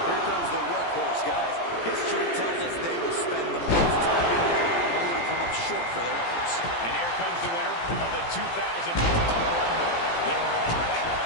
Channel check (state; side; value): late; right; 17 ms